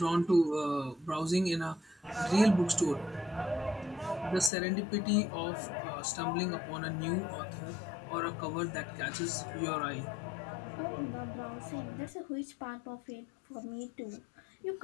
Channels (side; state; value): right; drops out; at 4.5 s